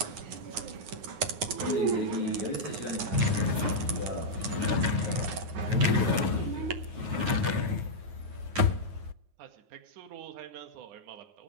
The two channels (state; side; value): late; left; 9.4 ms